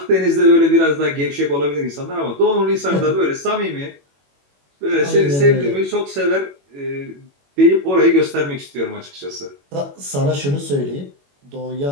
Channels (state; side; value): late; left; 21 ms